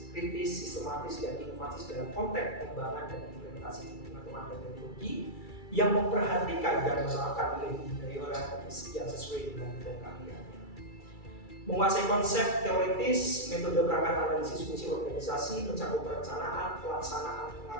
kritis, sistematis, dan inovatif dalam konteks pengembangan dan implementasi pengetahuan dan teknologi yang memperhatikan dan menerapkan nilai budaya orang yang sesuai dengan bidang keahliannya. Menguasai konsep teoritis, metode perangkat analisis fungsi organisasi, mencakup perencanaan, pelaksanaan,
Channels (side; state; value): right; late; 2.3 ms